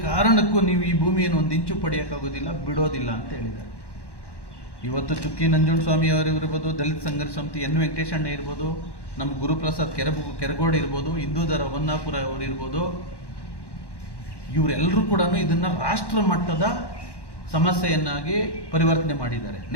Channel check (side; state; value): right; late; 1.1 ms